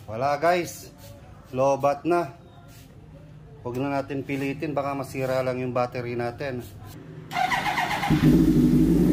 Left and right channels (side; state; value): both; identical; correlation 1.00